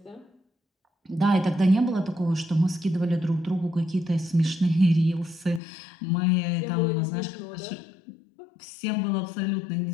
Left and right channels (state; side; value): drops out; right; at 5.6 s